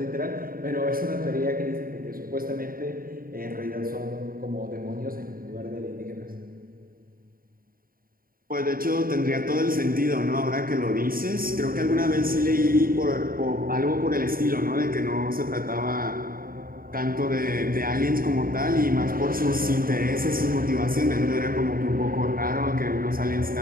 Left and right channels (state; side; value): late; left; 0.42 ms